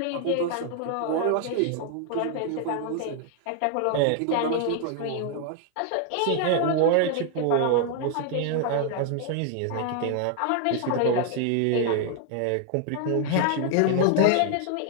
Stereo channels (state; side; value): different; both; correlation 0.00